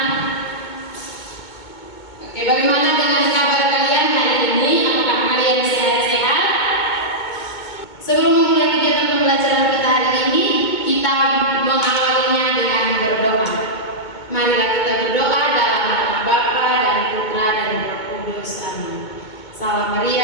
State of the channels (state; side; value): late; right; 2.2 ms